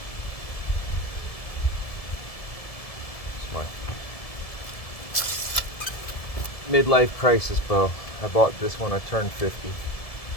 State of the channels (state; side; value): late; right; 1.7 ms